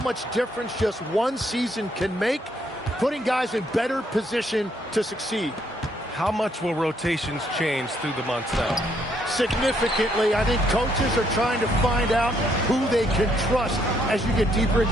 difference just one season can make, putting guys in better position to succeed. How much will rotations change through the months now? Significantly. I think coaches are trying to find out who they can trust as you get deeper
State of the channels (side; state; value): both; normal; correlation 0.71